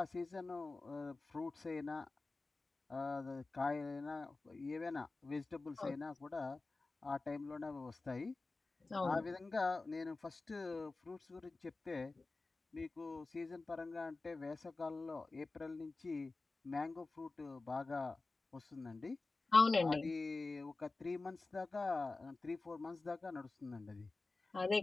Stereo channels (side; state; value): right; quieter; 3.5 dB